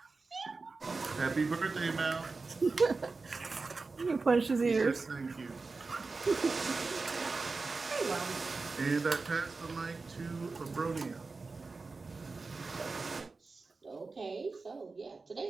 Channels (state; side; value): quieter; left; 4.0 dB